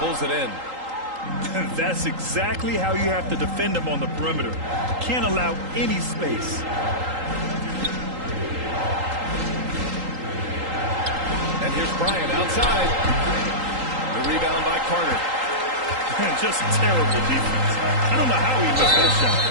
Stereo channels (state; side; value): late; left; 3.8 ms